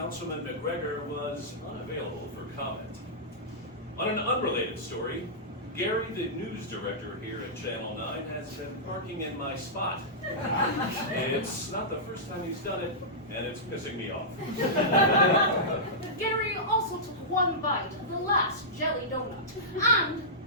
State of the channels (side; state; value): both; normal; correlation -0.15